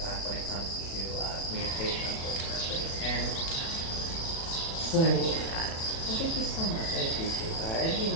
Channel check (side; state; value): right; late; 36 ms